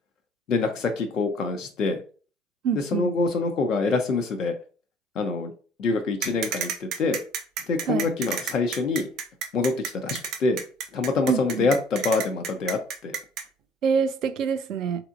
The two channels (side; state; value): both; normal; correlation 0.55